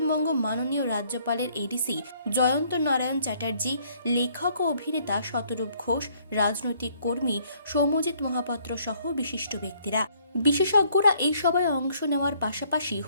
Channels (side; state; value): both; inverted; correlation -0.64